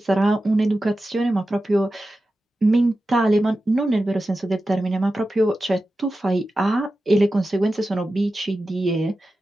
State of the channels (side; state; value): both; normal; correlation 0.93